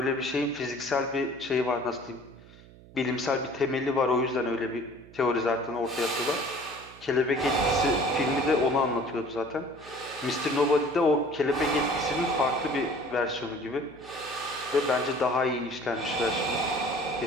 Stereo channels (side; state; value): right; noise; hum, 21 dB below the sound